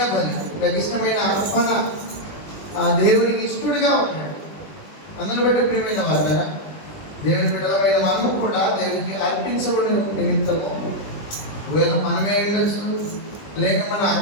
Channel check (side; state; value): right; late; 20 ms